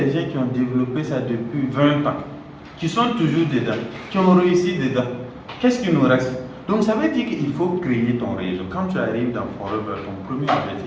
gens qui ont développé ça depuis 20 ans. qui sont toujours dedans, qui ont réussi dedans. Qu'est-ce qui nous reste? Donc ça veut dire qu'il faut créer ton réseau. Quand tu arrives dans Forever, ton premier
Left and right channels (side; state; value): both; identical; correlation 1.00